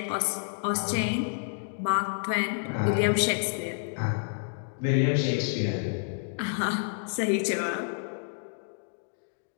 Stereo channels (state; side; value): silent; right; digital silence